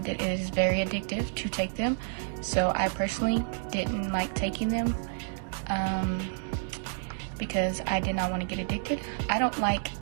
that it is very addictive to take them, so I personally didn't like taking them because I did not want to get addicted. I don't like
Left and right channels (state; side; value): silent; left; 58 dB below the other